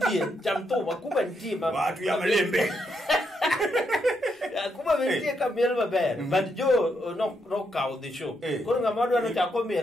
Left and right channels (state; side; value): normal; both; correlation 0.79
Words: Chamto Akuba ntie. Watu ya malembe. Akuba bentie ka miel maber. But Joe no cow the show. Koro ngamado no chako